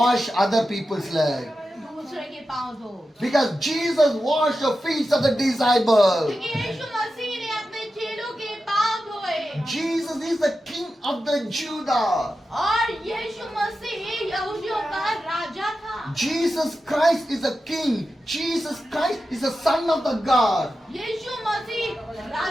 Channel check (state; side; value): normal; both; correlation 0.91